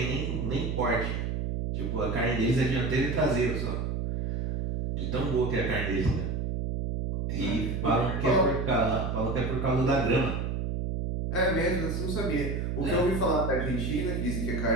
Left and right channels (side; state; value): right; noise; hum, 1 dB below the sound